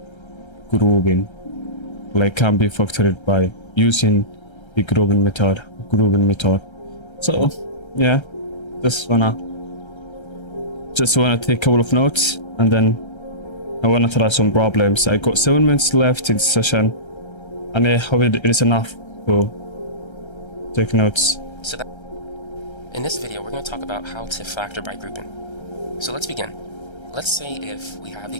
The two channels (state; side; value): late; right; 1.3 ms